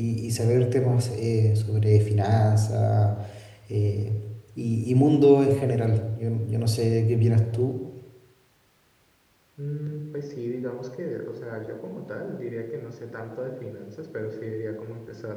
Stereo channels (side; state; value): both; identical; correlation 1.00